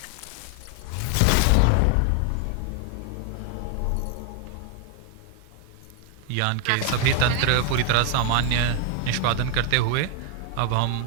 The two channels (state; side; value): different; both; correlation 0.01